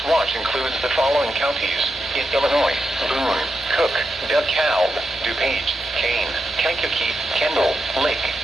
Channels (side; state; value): both; normal; correlation 0.86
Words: watch includes the following counties in Illinois: Boone, Cook, DeKalb, DuPage, Kane, Kankakee, Kendall, Lake,